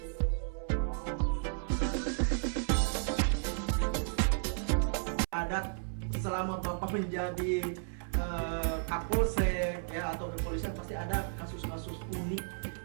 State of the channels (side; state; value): left; silent; 55 dB below the other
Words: selama Bapak menjadi Kapolsek ya atau kepolisian pasti ada kasus-kasus unik